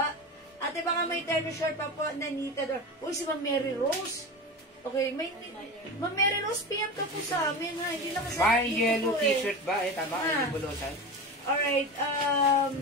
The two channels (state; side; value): normal; both; correlation 0.26